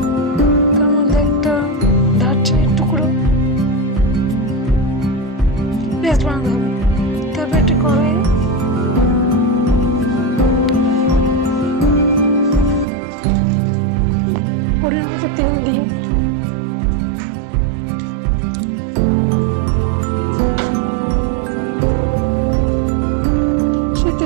তার মধ্যে একটা দারচিনির টুকরো পেস্ট বানাতে হবে। তারপর একটা কড়াই পরিমাণ মতো তেল দিয়ে সেই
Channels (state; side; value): drops out; left; at 12.9 s